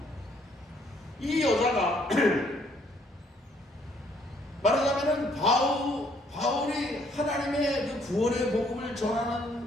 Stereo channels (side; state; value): both; normal; correlation 0.66